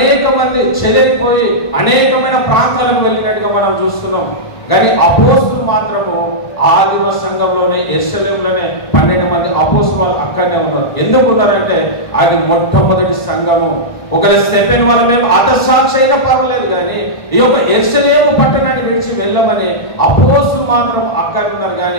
మంది చెదిరిపోయి అనేకమైన ప్రాంతాలకు వెళ్ళినట్టుగా మనం చూస్తున్నాం. కానీ అపోస్తులు మాత్రము ఆదిమ సంఘంలోనే యెరూషలేములోనే 12 మంది అపోస్తులు అక్కడనే ఉన్నారు. ఎందుకు ఉన్నారంటే అది మొట్టమొదటి సంఘము. ఒకవేళ స్టెఫెన్ వల్ల మేము హతసాక్షి అయినా పర్వాలేదు, కానీ ఈ యొక్క యెరూషలేము పట్టణాన్ని విడిచి వెళ్ళమని అపోస్తులు మాత్రం అక్కడ ఉన్నారు.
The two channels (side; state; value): right; late; 1.5 ms